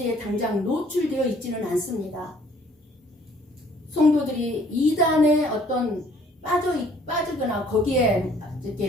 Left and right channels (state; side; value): normal; both; correlation 0.59